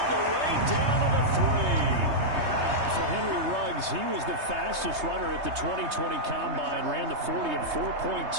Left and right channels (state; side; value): late; left; 3.2 ms